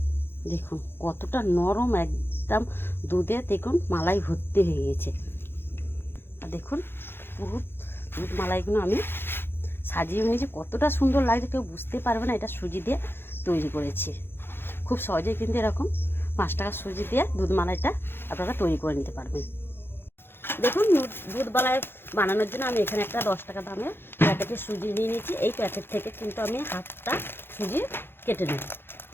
দেখুন কতটা নরম, একদম দুধে দেখুন মালাই ভর্তি হয়ে গেছে। আর দেখুন পুরো দুধ মালাইগুলো আমি সাজিয়ে নিয়েছি, কতটা সুন্দর লাগছে কেউ বুঝতে পারবে না এটা সুজি দিয়ে তৈরি করেছি। খুব সহজেই কিন্তু এরকম 5 টাকা সুজি দিয়ে দুধ মালাইটা আপনারা তৈরি করে নিতে পারবেন। দেখুন দুধ মালাই বানানোর জন্য আমি এখানে একটা 10 টাকা দামের প্যাকেটের সুজি নিয়ে নিয়েছি। এই প্যাকেট থেকে কিন্তু আমি হাফটা সুজি কেটে নেব।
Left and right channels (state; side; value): late; right; 0.11 ms